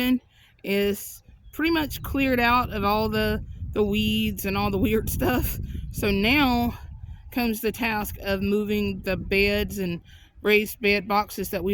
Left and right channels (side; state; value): both; identical; correlation 1.00